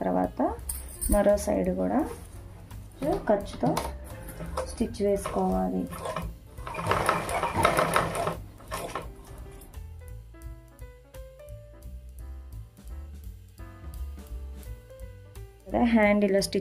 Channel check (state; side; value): identical; both; correlation 1.00